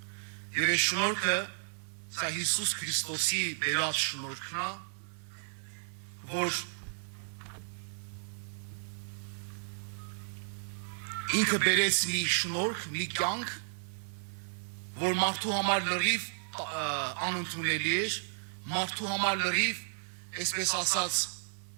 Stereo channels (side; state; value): left; silent; digital silence